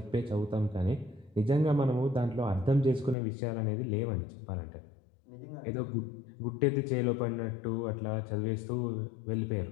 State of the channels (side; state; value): right; drops out; at 3.2 s